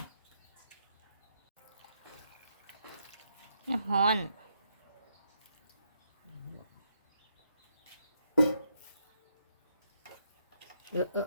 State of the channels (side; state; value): both; inverted; correlation -0.78